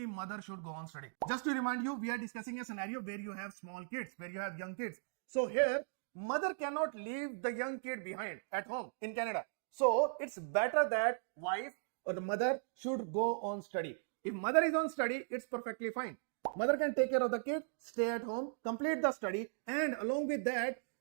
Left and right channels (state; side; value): silent; left; digital silence